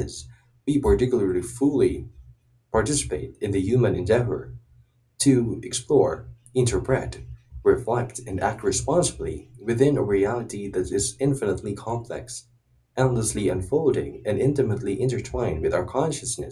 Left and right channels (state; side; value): identical; both; correlation 1.00